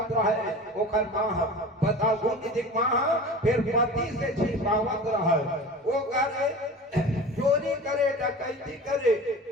रहे ओकर माँ बताओ गुण निधिक माँ फिर पति से छिपावत रहे वो करे चोरी करे डकैती करे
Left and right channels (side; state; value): both; normal; correlation 0.36